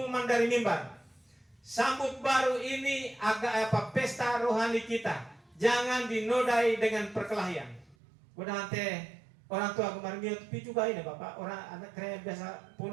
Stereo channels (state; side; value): drops out; left; at 8.0 s